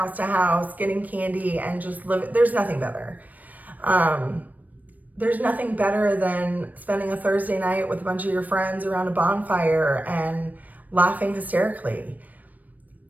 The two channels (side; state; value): left; late; 0.079 ms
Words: to house, getting candy and just living. There's nothing better. There's nothing better than spending a Thursday night with a bunch of your friends around a bonfire and laughing hysterically.